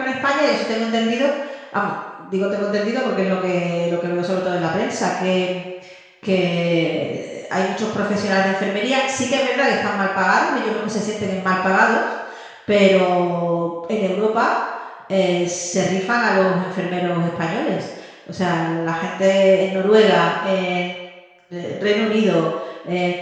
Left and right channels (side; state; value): both; identical; correlation 1.00